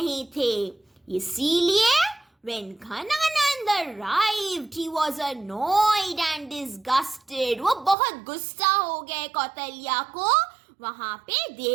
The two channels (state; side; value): drops out; left; at 8.0 s